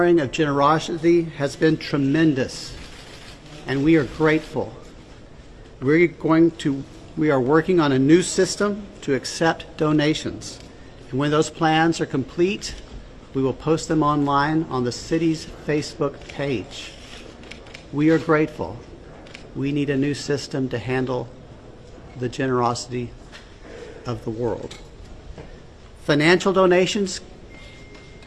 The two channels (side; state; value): both; identical; correlation 1.00